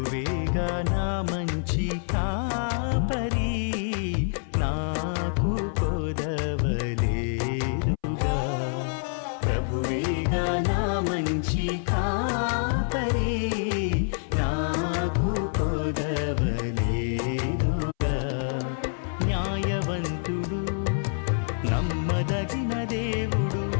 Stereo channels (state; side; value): silent; right; 60 dB below the other